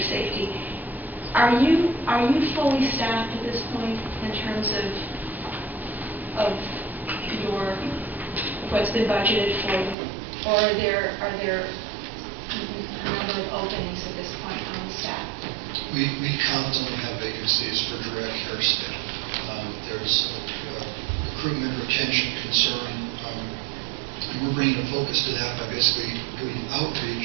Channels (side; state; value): left; drops out; at 10.0 s